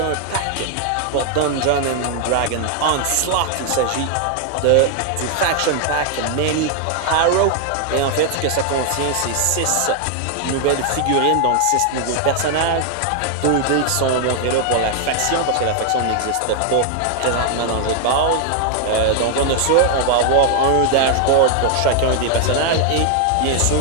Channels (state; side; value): different; both; correlation 0.00